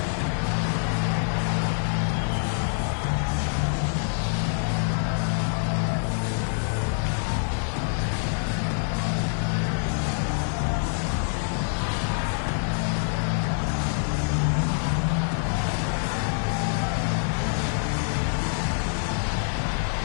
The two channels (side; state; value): right; silent; digital silence